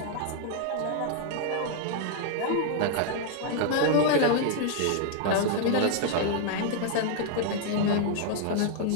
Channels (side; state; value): both; different; correlation 0.00